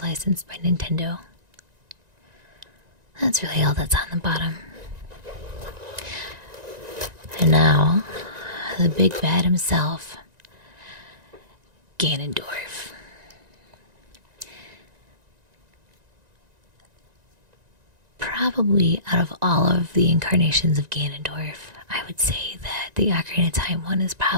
by Nintendo. That's really all that's on the bottom. And now, the big bad himself, Ganondorf. Probably out of all of the incarnations of Ganondorf, I would say that the Ocarina of Time one is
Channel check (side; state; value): left; late; 1.9 ms